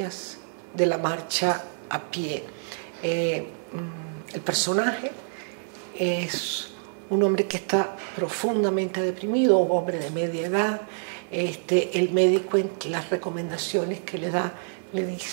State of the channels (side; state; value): left; silent; 60 dB below the other